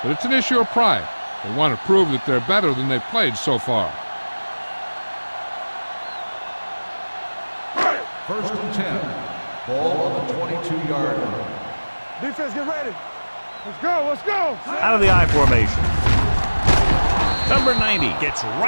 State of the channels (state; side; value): inverted; both; correlation -1.00